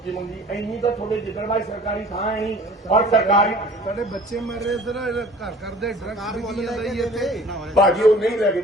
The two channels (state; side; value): normal; both; correlation 0.47